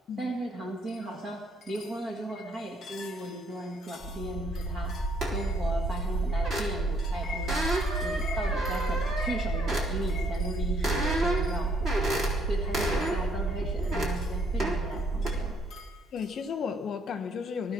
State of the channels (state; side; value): normal; both; correlation 0.68